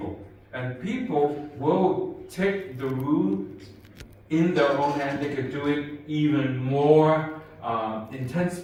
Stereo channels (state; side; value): identical; both; correlation 1.00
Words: And people will take the rule in their own hand. They could do it even more